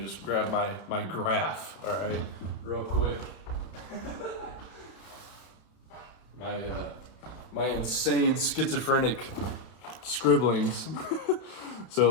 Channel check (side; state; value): right; late; 31 ms